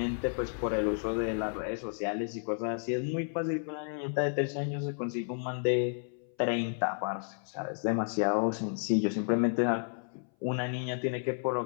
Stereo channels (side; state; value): right; silent; 56 dB below the other